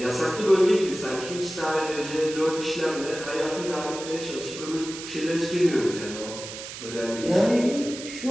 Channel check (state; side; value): noise; right; hiss, 10 dB below the sound